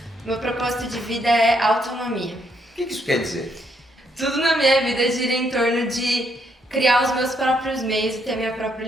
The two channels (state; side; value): normal; both; correlation 0.73